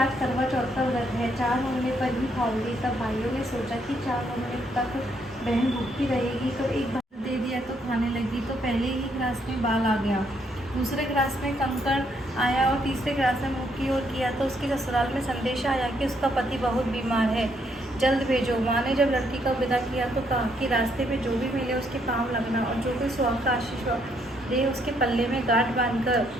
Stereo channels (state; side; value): normal; both; correlation 0.72